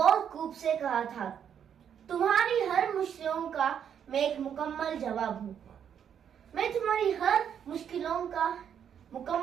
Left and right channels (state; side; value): quieter; left; 8.5 dB